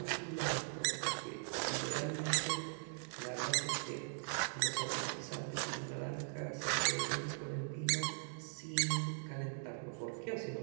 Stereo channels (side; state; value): left; silent; digital silence